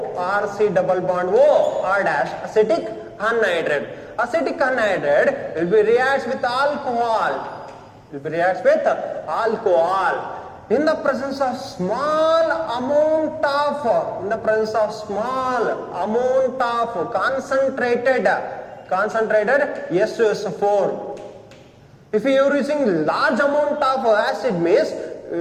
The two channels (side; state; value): both; identical; correlation 1.00